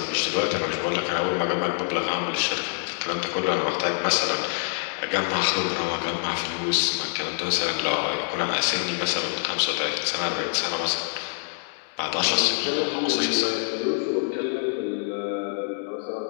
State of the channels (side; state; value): right; silent; 61 dB below the other